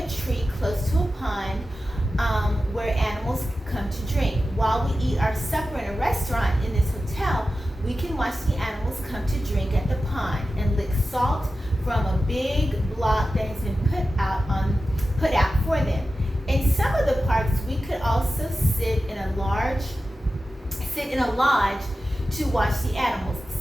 tree close to a pond where animals come to drink. While we eat our supper in a restaurant in this hotel, we can watch the animals come to drink at the pond and lick salt from a big block that has been put out for them. In some of the parks, we could also sit in a lodge to watch the animals.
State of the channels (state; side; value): normal; both; correlation 0.93